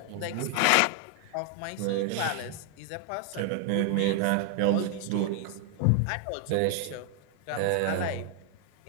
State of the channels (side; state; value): both; different; correlation 0.00